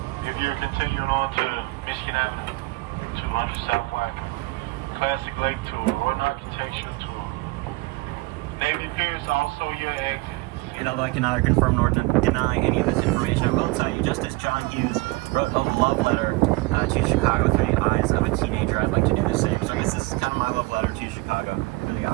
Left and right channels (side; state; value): left; quieter; 23.5 dB